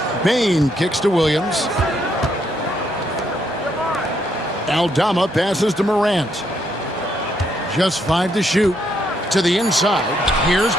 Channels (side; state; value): both; normal; correlation 0.74